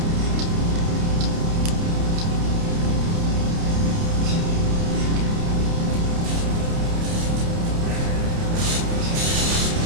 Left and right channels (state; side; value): late; left; 29 ms